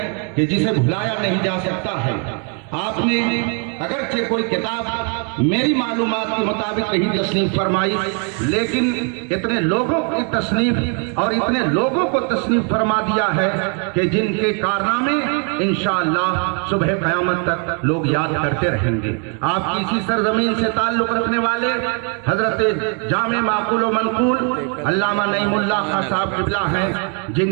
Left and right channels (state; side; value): quieter; left; 38.7 dB